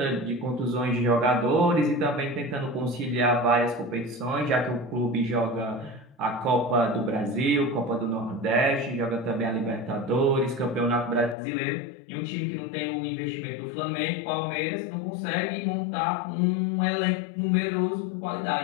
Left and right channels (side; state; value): right; drops out; at 11.4 s